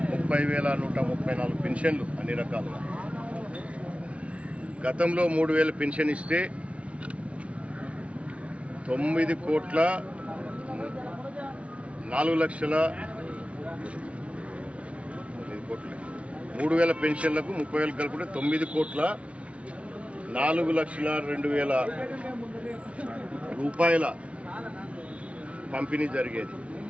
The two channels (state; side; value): late; left; 0.062 ms